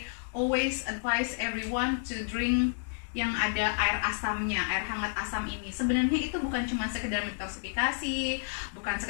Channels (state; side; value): silent; right; digital silence